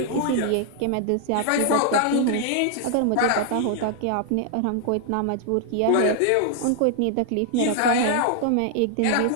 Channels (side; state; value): both; different; correlation 0.00